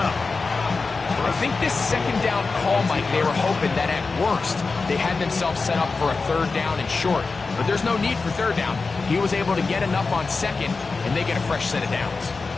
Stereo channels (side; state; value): right; quieter; 4.2 dB